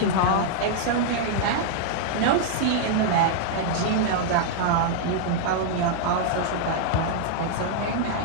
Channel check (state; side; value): different; both; correlation -0.01